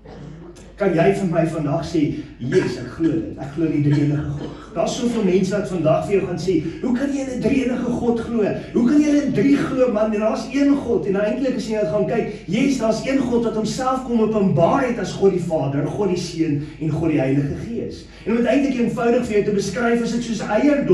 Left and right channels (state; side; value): identical; both; correlation 1.00